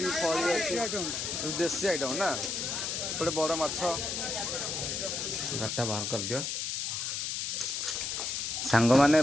ଫଳି ଅଛି, ଦେଶୀ ଆଇଟମ୍ ନା। ଗୋଟେ ବଡ଼ ମାଛ ଗାଡ଼ିଟା ବାହାର କରିଦିଅ। ସାଙ୍ଗମାନେ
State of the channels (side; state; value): left; noise; hiss, 2 dB below the sound